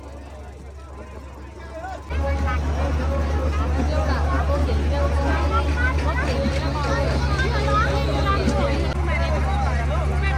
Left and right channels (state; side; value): identical; both; correlation 1.00